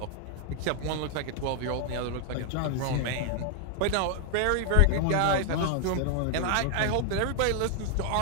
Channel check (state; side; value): different; both; correlation 0.00